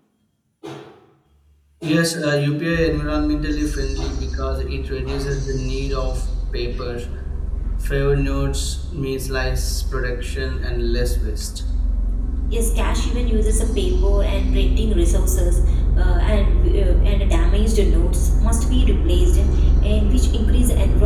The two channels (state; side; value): identical; both; correlation 1.00